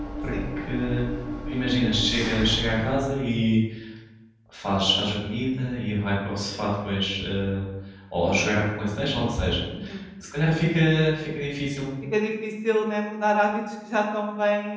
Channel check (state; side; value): identical; both; correlation 1.00